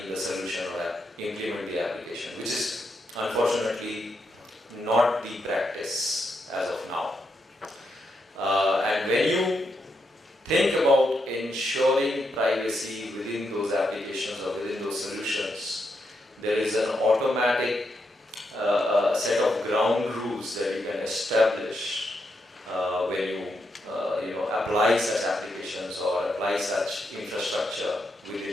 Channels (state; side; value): normal; both; correlation 0.82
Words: the solution or implement the application, which is unfortunately not the practice as of now. And when you think about ensuring privacy within those applications or within those solutions, there is an automatic set of ground rules that you can establish when you apply such applications or apply such infrastructure